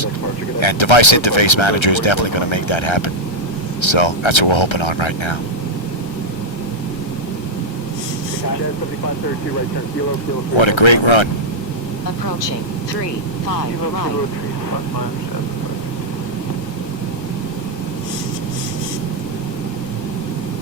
And Device Interface Manager is definitely going to make that happen. So that's what we're hoping on right now. What a great run. Approaching 3-5 right.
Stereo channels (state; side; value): late; right; 1.3 ms